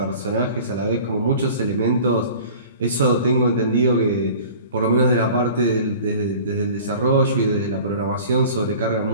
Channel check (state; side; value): inverted; both; correlation -0.43